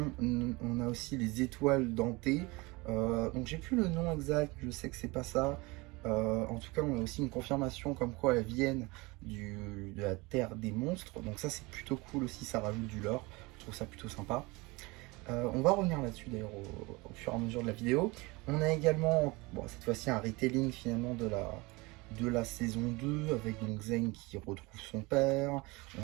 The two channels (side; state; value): left; quieter; 24.4 dB